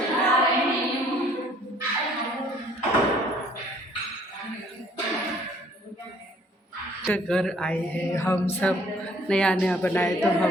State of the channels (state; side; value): normal; both; correlation 0.59